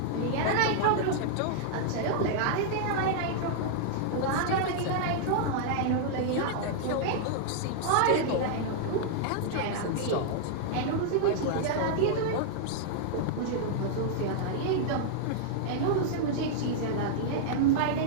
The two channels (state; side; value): different; both; correlation -0.01